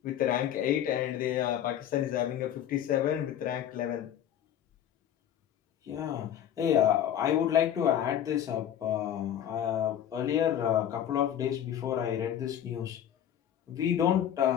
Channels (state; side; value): quieter; right; 10.3 dB